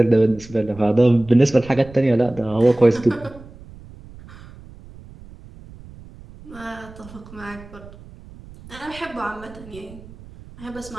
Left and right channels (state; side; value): noise; right; rumble, 19 dB below the sound